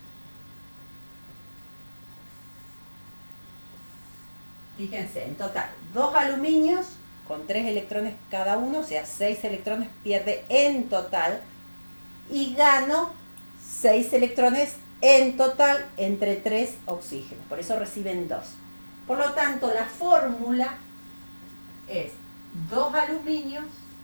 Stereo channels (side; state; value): both; inverted; correlation -1.00